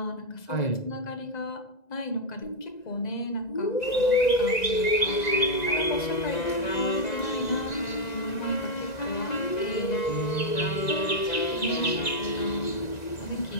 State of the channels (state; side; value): late; right; 1.9 ms